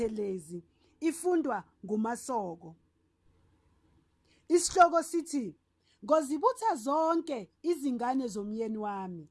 ifundwa nguMaSoko. Isihloko sithi Ngozibutha zonke izingane zomyeni wami.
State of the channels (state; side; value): identical; both; correlation 1.00